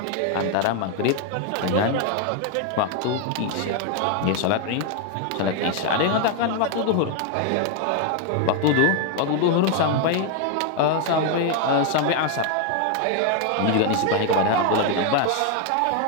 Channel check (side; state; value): both; different; correlation 0.01